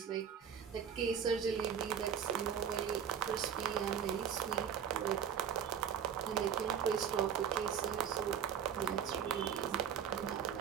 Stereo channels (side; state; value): left; quieter; 8.2 dB